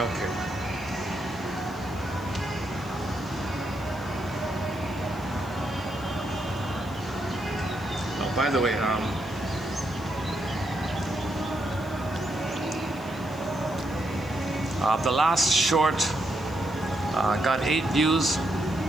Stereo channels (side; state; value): left; noise; hiss, 23 dB below the sound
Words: okay. Oh, by the way, the last short got 8 views.